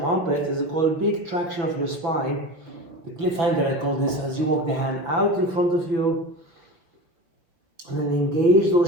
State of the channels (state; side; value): late; left; 5.8 ms